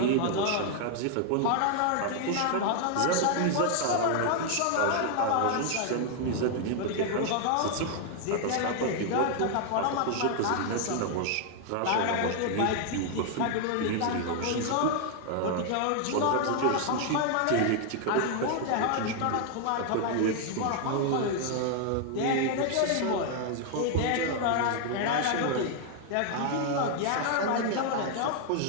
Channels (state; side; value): different; both; correlation 0.00